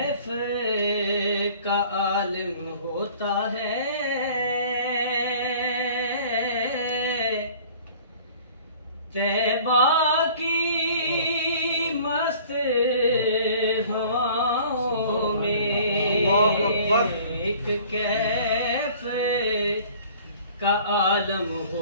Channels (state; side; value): inverted; both; correlation -0.50